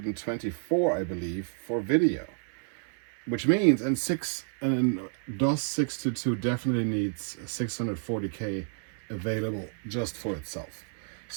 I believe, for video. Which means, and DOS 622 definitely needs 640K available just for itself.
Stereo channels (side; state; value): left; silent; 58 dB below the other